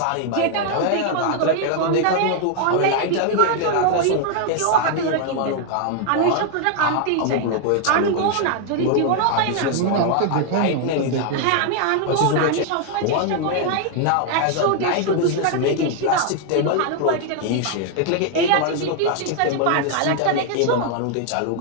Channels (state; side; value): different; both; correlation 0.00